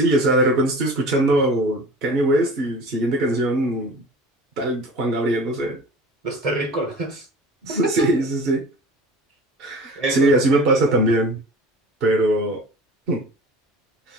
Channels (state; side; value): normal; both; correlation 0.40